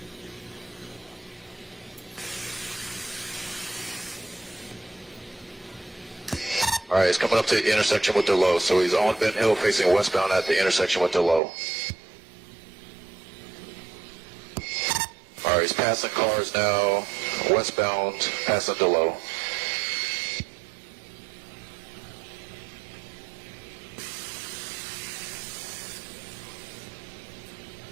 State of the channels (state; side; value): drops out; left; at 11.4 s